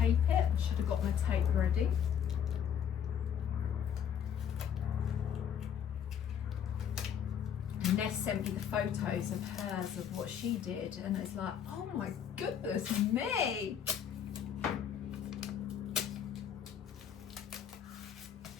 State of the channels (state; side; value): quieter; right; 8.6 dB